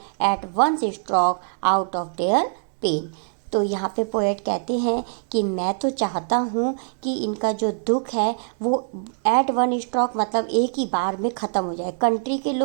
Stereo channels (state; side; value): silent; left; 63 dB below the other